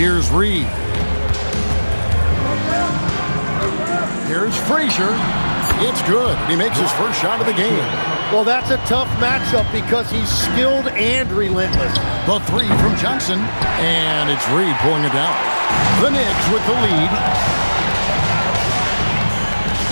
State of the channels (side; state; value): both; inverted; correlation -1.00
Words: Reed. Here's Frazier. It's good. He makes his first shot of the game. Well, that's a tough matchup because he's skilled and relentless. The three from Johnson. And it's Reed pulling it down. The Knicks with the lead.